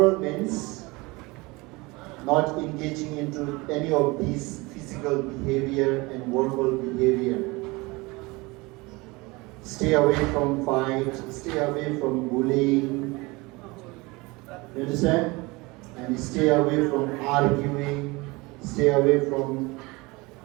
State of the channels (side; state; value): left; quieter; 24.1 dB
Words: means not engaging into any of these physical behavior and verbal behavior. Stay away from fight, stay away from bullying, you understand? And stay away from arguing, stay away from